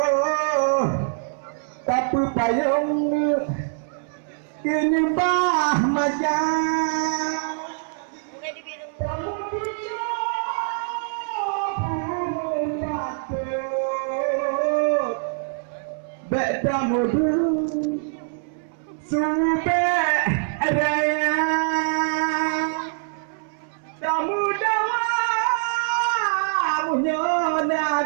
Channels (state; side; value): silent; left; 63 dB below the other